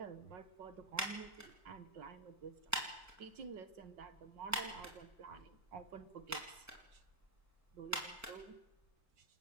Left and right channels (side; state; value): both; normal; correlation -0.05